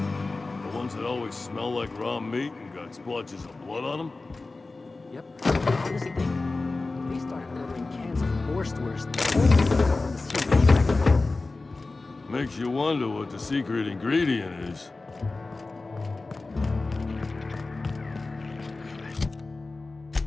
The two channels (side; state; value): right; quieter; 3.5 dB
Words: The ones that always smell like raw meat and got splotches of blood on them? Yep. Honest thing, they started ordering cans of Wurstwurst only from the sea. Makes you wonder what the secret ingredient is.